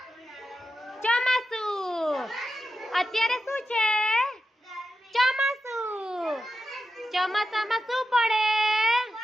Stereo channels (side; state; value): both; normal; correlation 0.90